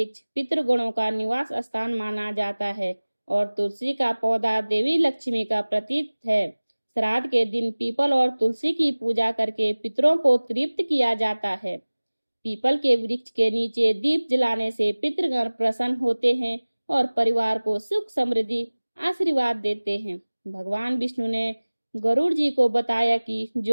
पितृगणों का निवास स्थान माना जाता है और तुलसी का पौधा देवी लक्ष्मी का प्रतीक है। श्राद्ध के दिन पीपल और तुलसी की पूजा करके पितरों को तृप्त किया जाता है। पीपल के वृक्ष के नीचे दीप जलाने से पितृगण प्रसन्न होते हैं और परिवार को सुख समृद्धि आशीर्वाद देते हैं। भगवान विष्णु ने गरुड़ जी को बताया कि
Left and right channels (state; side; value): inverted; both; correlation -1.00